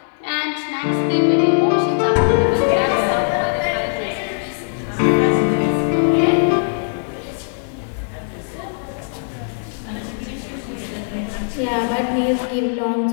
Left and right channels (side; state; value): right; silent; 65 dB below the other